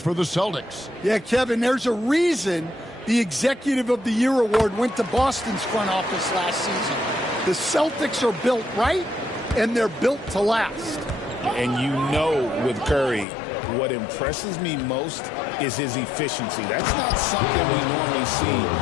for the Celtics. Yeah, Kevin, there's a reason the Executive of the Year award went to Boston's front office last season. The Celtics are built right, and they're built to last. And you know with Curry, what impresses me most is his efficiency. That's not something we normally see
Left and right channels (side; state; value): right; drops out; at 13.2 s